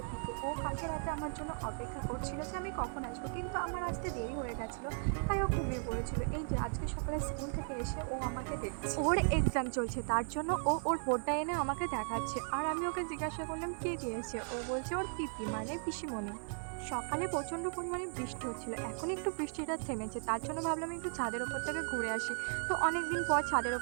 পিকু। ও কালকে রাতে আমার জন্য অপেক্ষা করছিল যে আমি কখন আসবো, কিন্তু আমার আসতে দেরি হয়ে গেছিলো, তাই ও ঘুমিয়ে পড়েছিল। এই যে আজকে সকালে স্কুল থেকে এসে ও আমাকে দেখছে, ওর এক্সাম চলছে, তার জন্য ও ওর বোর্ডটা এনে আমাকে দেখাচ্ছে। আর আমি ওকে জিজ্ঞাসা করলাম কে দিয়েছে, ও বলছে ওর পিপি মানে পিসিমণি। সকালে প্রচণ্ড পরিমাণে বৃষ্টি হচ্ছিল, এখন একটু বৃষ্টিটা থেমেছে, তার জন্য ভাবলাম একটু ছাদের ওপর থেকে ঘুরে আসি। তো অনেক দিন পর ছাদের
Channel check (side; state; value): left; silent; 53 dB below the other